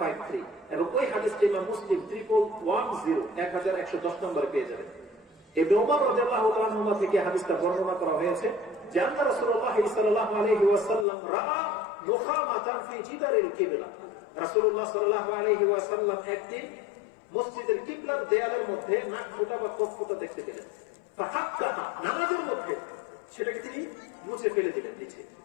এবং ওই হাদিসটি ইমাম মুসলিম 1110 নম্বরে পেয়ে যাবেন। ইবনে ওমর রাদিয়াল্লাহু তাআলা আনহু থেকে হাদিসটা বর্ণনা করা হয়েছে যে আল্লাহ রাসূলুল্লাহ সাল্লাল্লাহু আলাইহি ওয়াসাল্লাম রাআ মুখামাতান ফি জিদারিল কিবলা। রাসূলুল্লাহ সাল্লাল্লাহু আলাইহি ওয়াসাল্লাম একদিন মসজিদের কিবলার দেয়ালের মধ্যে নাক ফোঁটা বা কফ ফোঁটা দেখতে পেলেন। ফাহাক্কাহা, নামাজের মধ্যে সেটাকে তিনি মুছে ফেলে দিলেন নিচে।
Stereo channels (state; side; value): drops out; right; at 11.1 s